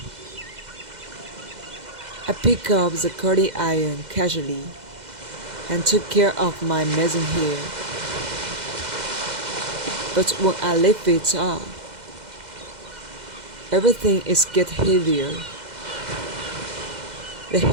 I picked up the curling iron casually and took care of my messy hair. But when I lift it up, everything is getting heavier. The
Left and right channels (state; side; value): late; left; 2.0 ms